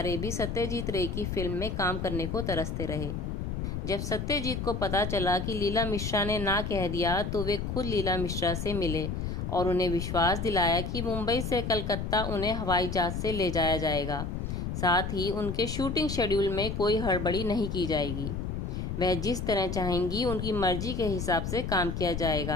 भी सत्यजीत रे की फिल्म में काम करने को तरसते रहे। जब सत्यजीत को पता चला कि लीला मिश्रा ने ना कह दिया तो वे खुद लीला मिश्रा से मिले और उन्हें विश्वास दिलाया कि मुंबई से कलकत्ता उन्हें हवाई जहाज से ले जाया जाएगा। साथ ही उनके शूटिंग शेड्यूल में कोई हड़बड़ी नहीं की जाएगी। वह जिस तरह चाहेंगी उनकी मर्जी के हिसाब से काम किया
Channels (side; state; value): left; noise; rumble, 3 dB below the sound